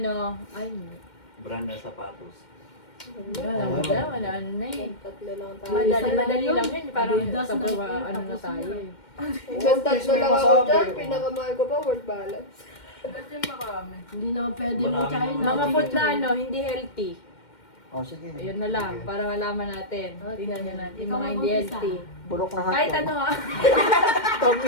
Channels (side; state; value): right; late; 2.1 ms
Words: ay, Brand ng sapatos. wala na eh. Tatlo lang tayo. Madali lang yun. Parang Adidas sa na ano tapos na tayo eh. Hanggang tatlo lang ako dyan. Pinakamahal ko pa, world balance. Ba't yung marami? Hindi naman pwede Marami mo China. Mga food na ano, hindi healthy. Oh, sige. Ayun na lang, para malaman natin. Tingnan nyo natin, yung Ikaw mga hindi mag-umpisa. healthy. Bulok na hotdog. Kahit ano ha.